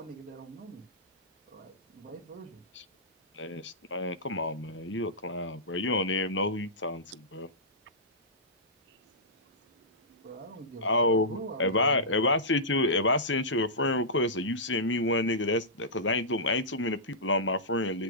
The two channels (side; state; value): both; normal; correlation -0.15